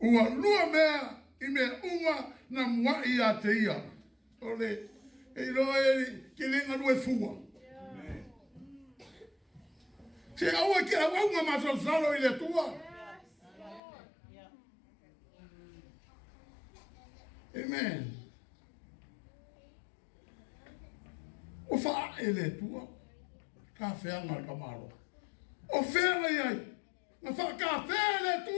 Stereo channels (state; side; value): drops out; right; at 13.8 s